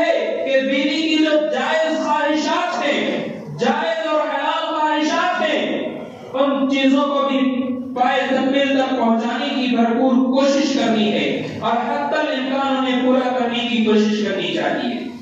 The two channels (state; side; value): identical; both; correlation 1.00